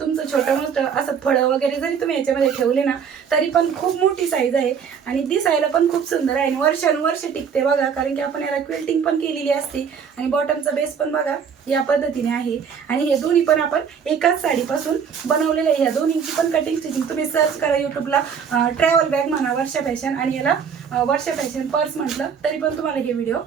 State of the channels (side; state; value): left; quieter; 7.0 dB